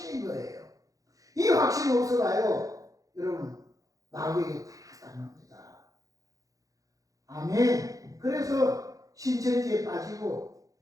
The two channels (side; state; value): left; late; 0.17 ms